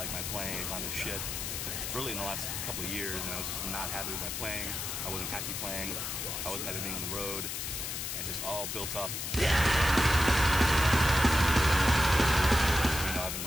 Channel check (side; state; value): left; noise; hiss, 4 dB below the sound